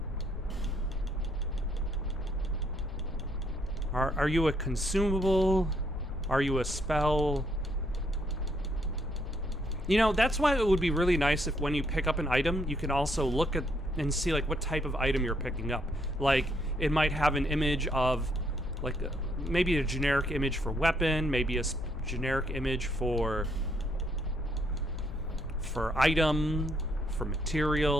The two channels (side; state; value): both; normal; correlation 0.71